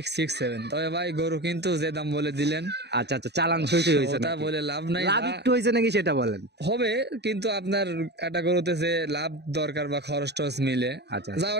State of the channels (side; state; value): left; late; 0.49 ms